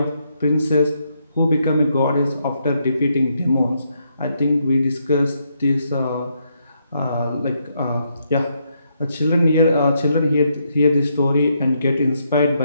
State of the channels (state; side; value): inverted; both; correlation -0.77